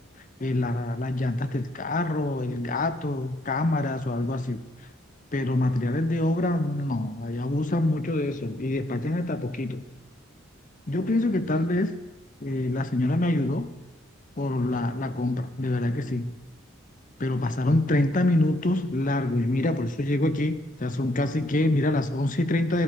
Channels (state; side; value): normal; both; correlation 0.72